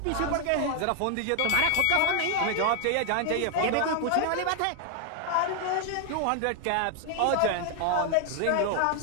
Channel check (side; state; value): both; different; correlation 0.00